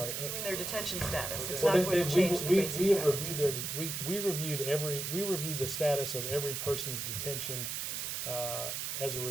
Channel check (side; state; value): right; noise; hiss, 3 dB below the sound